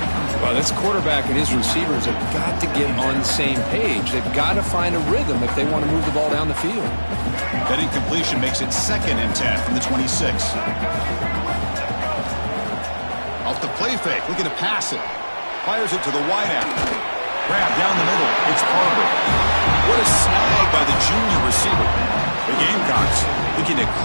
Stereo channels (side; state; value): both; inverted; correlation -1.00